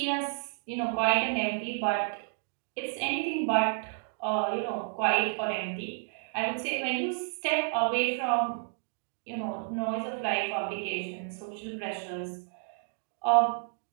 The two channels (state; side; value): silent; left; 57 dB below the other